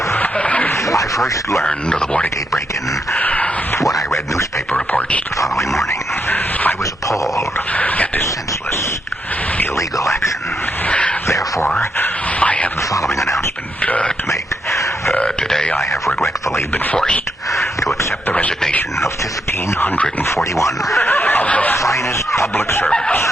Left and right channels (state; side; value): normal; both; correlation 0.80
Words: I first learned of the Watergate break-in when I read newspaper reports the following morning. I was appalled at this senseless, illegal action. Therefore, I have the following announcement to make. Today, I have regretfully been forced to accept the resignation of 1,541 of the finest public servants.